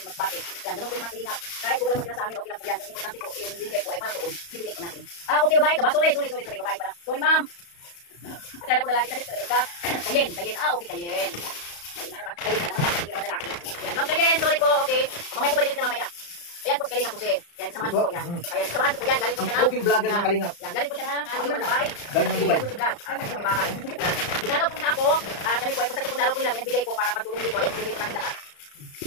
Masbate. Yan, ganun po yung mga kalingap. Kahit po wala magkina sa amin, okay lang po yan. Kasi importante po, yung bigay po ay para doon. Bibigay po natin. Okay, babae ka ba? Sorry, babae pala. Sorry, ma'am. Akala ko lalaki kasi ka. Kayen. Okay, kayen. Kayen na naman, hindi naman lalaki. Yan, ma'am, kayen, sorry po, okay. Mamaya po balikan kita mamaya. Ayan po si Kalingap po siya. Yan, kasamahan ko po yan. Kaya kasamahan ko po yan, galing po siya ng... Cooking vlogger ng Kalingap. Yan, galing po siya ng Dubai. Galing ng Dubai. Sa may bahay. Dinalaw po niya ako. Kami po ay pasag po dalaw po nila. May nagbigay po para pagtulong dito. Ayan, pinigay po namin lahat.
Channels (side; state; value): right; late; 35 ms